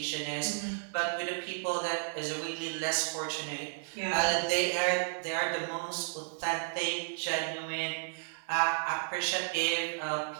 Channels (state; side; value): silent; left; 56 dB below the other